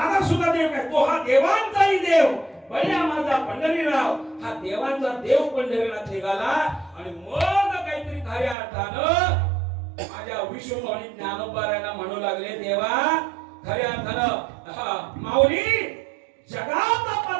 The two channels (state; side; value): drops out; left; at 8.6 s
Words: सुद्धा देव काय, तो हा देवांचाही देव बळ्या माझा पंढरीराव, हा देवांचा देव पंढरीनाथ निघाला. आणि मग काहीतरी खऱ्या अर्थानं माझ्या विश्वमणी ज्ञानोबारायला म्हणू लागले देवा खऱ्या अर्थानं माऊली जगाचा